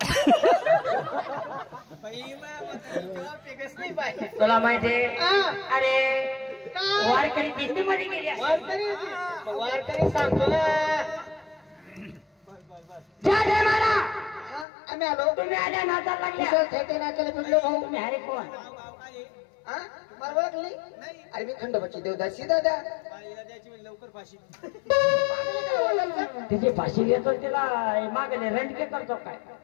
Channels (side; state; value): right; drops out; at 14.7 s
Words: नाही पाहिजे तुला माहिती अरे वारकरी दिंडीमध्ये गेली वारकरी सांगतो ना जय जय मारा आम्ही आलो तुम्ही आल्या नाचायला लागल्या नाचायला भेटलो भाऊ तुम्ही अरे कोण मला ओळखली अरे मी खंडोबाची देवदासी दादा लवकर फाशी तिची फाशी घेतो तिला मागले रंडके करतो काय